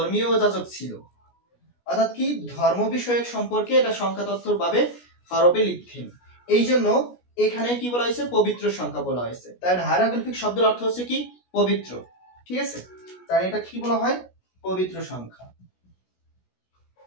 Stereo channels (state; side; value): late; right; 17 ms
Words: যাজক ছিল, অর্থাৎ কি ধর্ম বিষয়ক সম্পর্কে এটা সংখ্যা তত্ত্বর ভাবে হরফে লিখতেন। এই জন্য এখানে কি বলা হয়েছে? পবিত্র সংখ্যা বলা হয়েছে। তাই হায়ারোগ্লিফিক শব্দের অর্থ হচ্ছে কি পবিত্র। ঠিক আছে, তাই এটা কি বলা হয়? পবিত্র সংখ্যা।